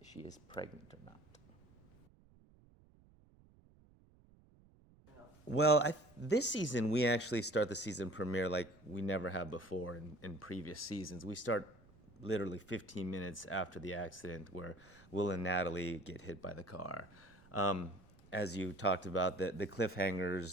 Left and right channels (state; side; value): noise; right; rumble, 27 dB below the sound